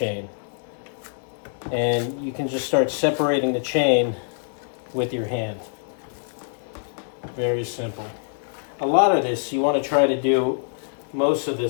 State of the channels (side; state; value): right; silent; digital silence